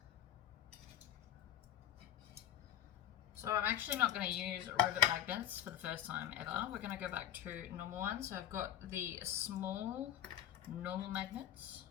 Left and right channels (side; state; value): right; quieter; 11.3 dB